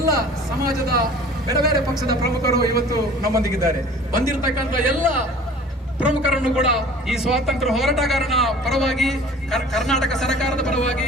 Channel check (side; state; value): both; normal; correlation 0.46